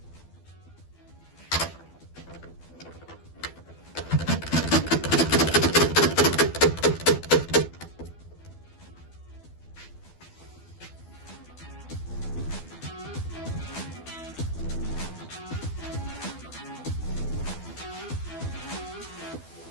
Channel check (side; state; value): right; late; 12 ms